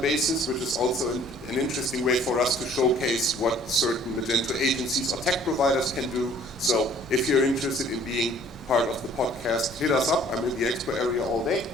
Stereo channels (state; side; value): noise; left; rumble, 26 dB below the sound